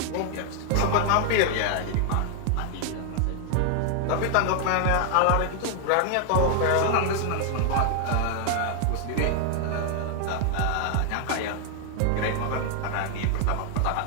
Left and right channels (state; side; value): different; both; correlation 0.00